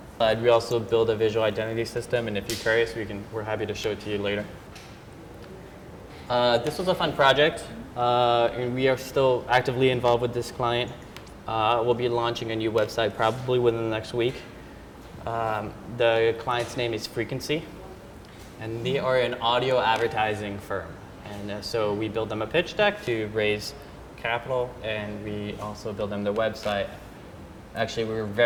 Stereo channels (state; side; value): identical; both; correlation 1.00